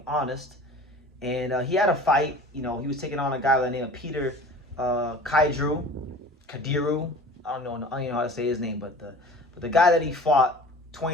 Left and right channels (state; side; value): normal; both; correlation 0.42